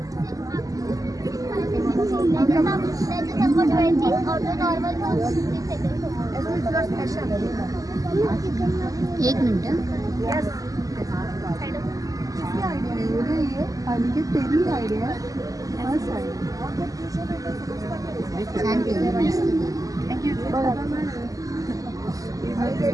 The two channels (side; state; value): left; late; 0.17 ms